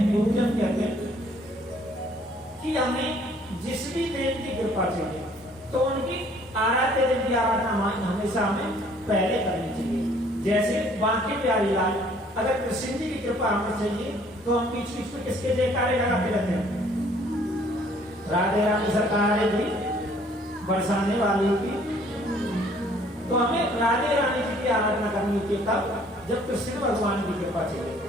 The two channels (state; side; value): normal; both; correlation 0.59